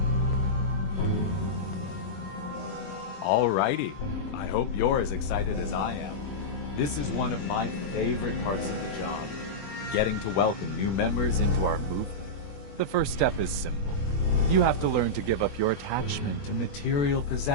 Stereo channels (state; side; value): late; right; 21 ms